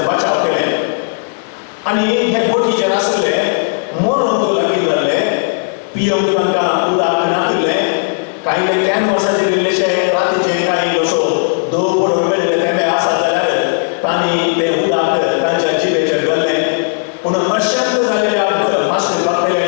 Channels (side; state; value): right; silent; digital silence